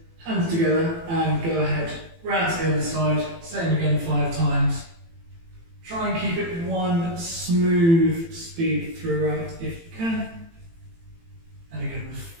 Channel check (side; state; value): left; late; 18 ms